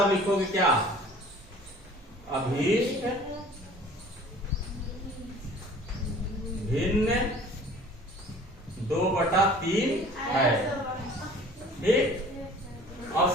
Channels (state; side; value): normal; both; correlation 0.48